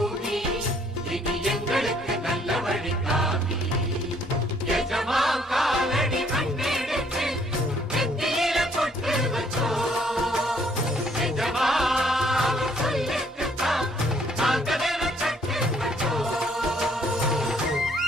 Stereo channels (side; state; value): both; normal; correlation 0.64